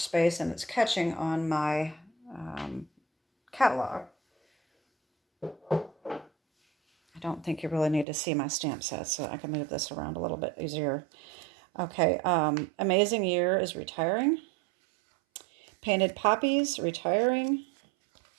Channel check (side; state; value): left; drops out; at 8.1 s